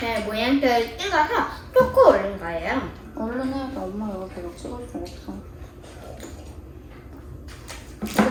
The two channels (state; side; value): identical; both; correlation 1.00